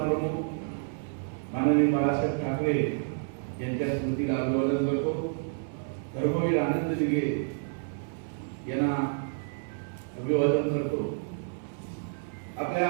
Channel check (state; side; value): silent; left; 58 dB below the other